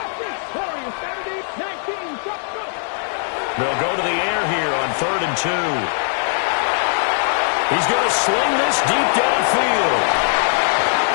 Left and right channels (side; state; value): right; silent; 66 dB below the other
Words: They'll go to the air here on 3rd and 2. He's going to sling this deep downfield.